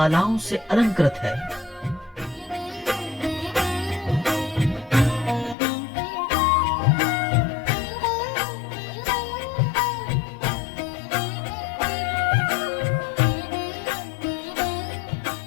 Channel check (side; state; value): right; drops out; at 5.6 s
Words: से अलंकृत है।